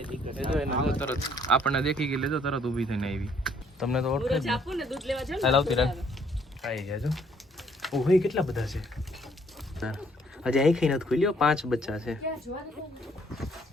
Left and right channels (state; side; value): normal; both; correlation 0.65